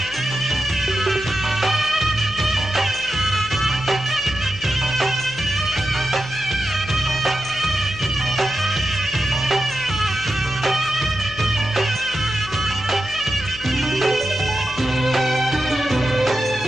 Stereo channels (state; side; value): noise; left; hum, 16 dB below the sound